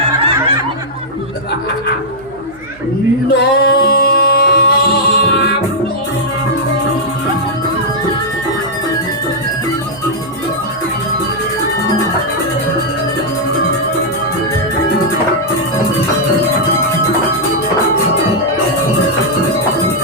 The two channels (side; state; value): right; noise; hum, 26 dB below the sound